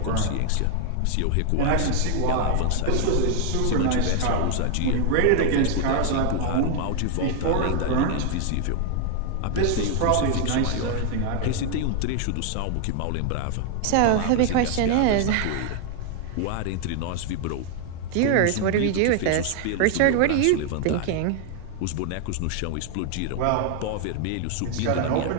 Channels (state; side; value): different; both; correlation 0.00